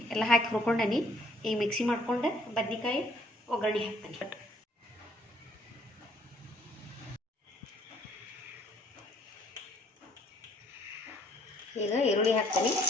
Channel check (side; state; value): both; normal; correlation 0.62